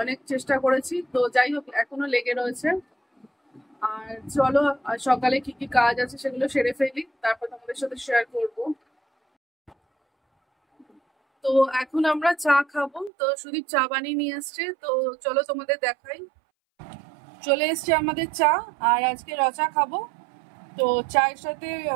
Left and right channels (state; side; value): drops out; left; at 13.1 s